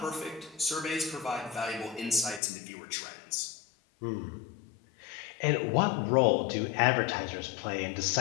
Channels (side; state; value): right; drops out; at 2.4 s